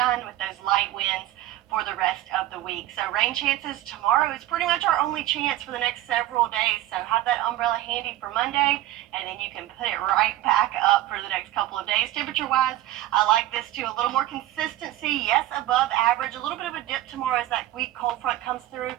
with those light winds for the rest of the week. So rain chances tomorrow is pretty much our only chance for the next several days. So have that umbrella handy for Monday, and then you can put it right back up for the next couple of days. Temperature-wise, I like this too. A little more consistency, yes, above average. A little bit of a dip tomorrow as that weak cold front comes through,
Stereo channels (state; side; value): quieter; left; 14.7 dB